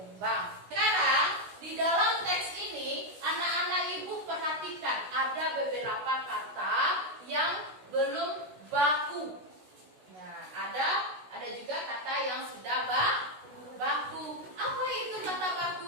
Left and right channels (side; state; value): left; late; 16 ms